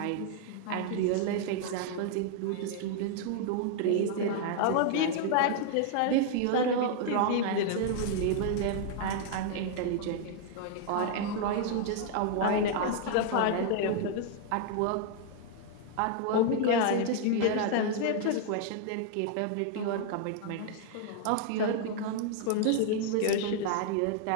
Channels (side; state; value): both; different; correlation 0.00